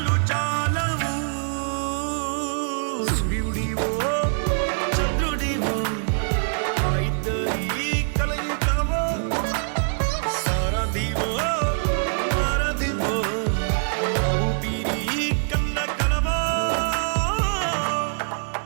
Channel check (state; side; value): silent; left; digital silence